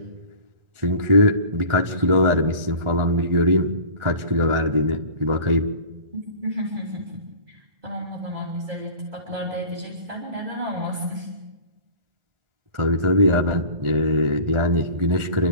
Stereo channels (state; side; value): late; left; 1.4 ms